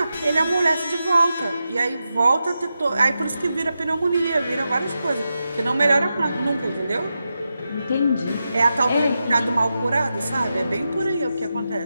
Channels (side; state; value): both; inverted; correlation -0.89